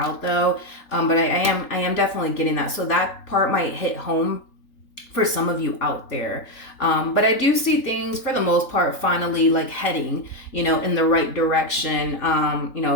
though. But I am definitely getting that. So that part might hit home for some of you out there. But I do see things for the most part finally like heading, you know, in the right direction, you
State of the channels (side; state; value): right; late; 3.8 ms